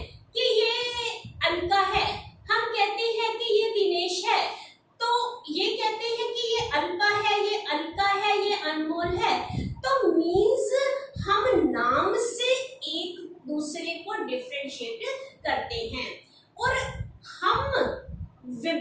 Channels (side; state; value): both; identical; correlation 1.00